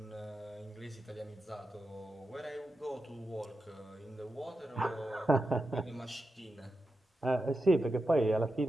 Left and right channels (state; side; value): normal; both; correlation 0.90